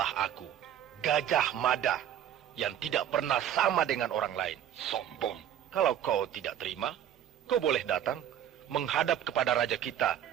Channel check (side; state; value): left; quieter; 10.5 dB